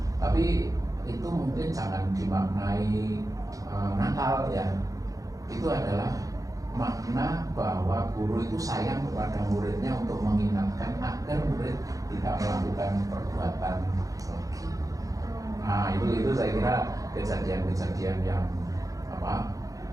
Tapi itu mungkin jangan dimaknai nakal ya. Itu adalah makna bahwa guru itu sayang kepada muridnya untuk mengingatkan agar murid tidak melakukan perbuatan lagi. Nah itu saya kira kejadian-kejadian yang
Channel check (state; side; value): late; left; 0.17 ms